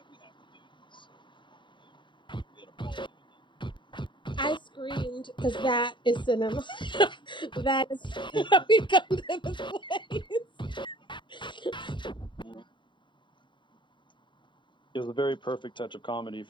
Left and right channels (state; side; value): late; right; 0.23 ms